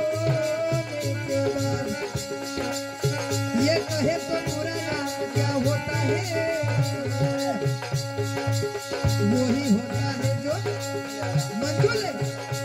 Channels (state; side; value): identical; both; correlation 1.00